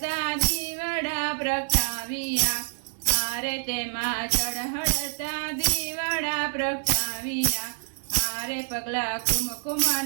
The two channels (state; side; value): silent; left; digital silence